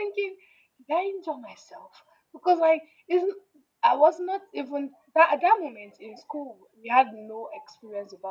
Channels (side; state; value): both; identical; correlation 1.00